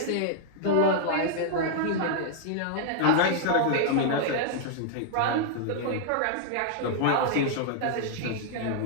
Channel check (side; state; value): both; different; correlation -0.01